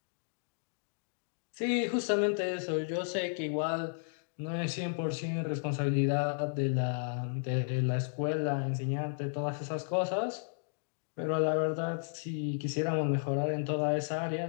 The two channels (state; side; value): silent; right; digital silence